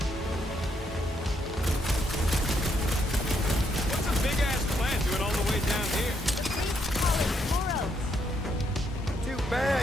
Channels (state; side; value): normal; both; correlation 0.75